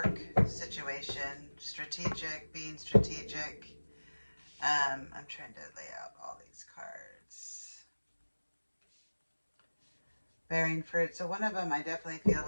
situation, strategic, being strategic. I'm trying to lay out all these cards. Bearing fruit. So one of them I definitely feel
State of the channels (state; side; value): inverted; both; correlation -1.00